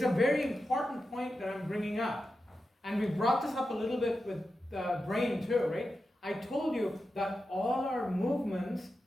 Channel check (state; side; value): normal; both; correlation 0.90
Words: a very important point that I'm bringing up. And we brought this up a little bit with the brain too, right? I told you that all our movements